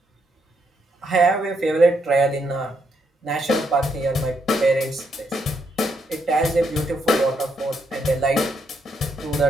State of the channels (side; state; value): both; normal; correlation 0.77